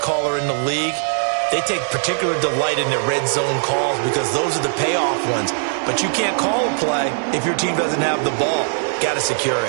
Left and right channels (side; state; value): left; silent; 66 dB below the other